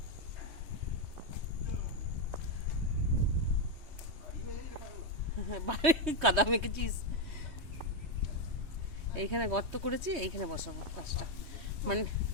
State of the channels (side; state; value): left; late; 3.2 ms